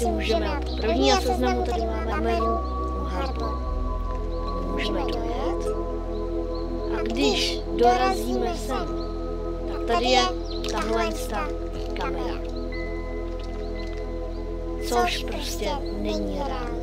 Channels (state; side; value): identical; both; correlation 1.00